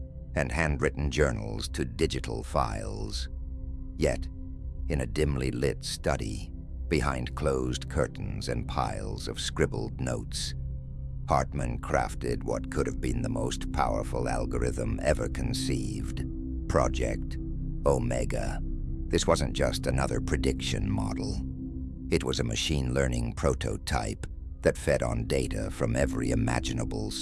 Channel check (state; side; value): identical; both; correlation 1.00